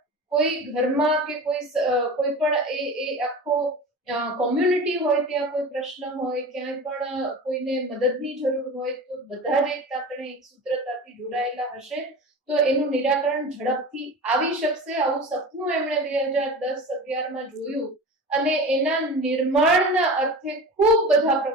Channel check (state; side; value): normal; both; correlation 0.33